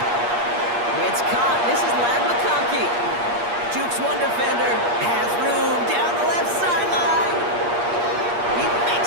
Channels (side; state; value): left; late; 8.5 ms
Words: It's caught. This is Lad McConkey. Jukes one defender. Has room down the left sideline. He